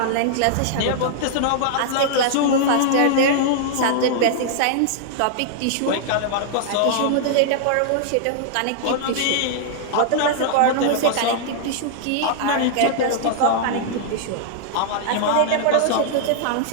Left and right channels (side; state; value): both; different; correlation -0.01